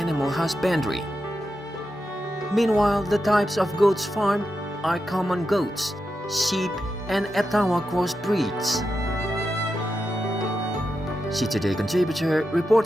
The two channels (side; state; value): both; normal; correlation 0.88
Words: husbandry. Meanwhile, the types of goats farmed are common goats, sheep and Etawa cross breeds. Today contributor